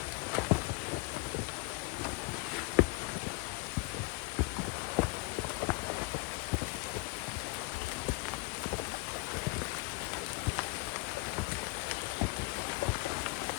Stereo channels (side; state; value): right; quieter; 26.4 dB